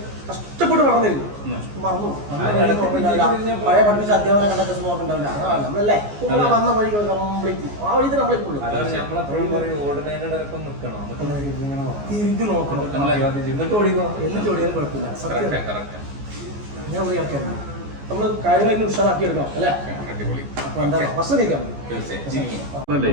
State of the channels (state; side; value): late; left; 14 ms